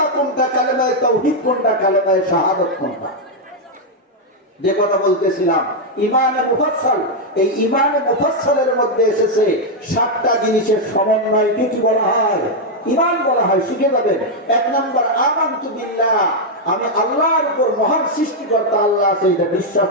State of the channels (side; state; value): both; normal; correlation 0.00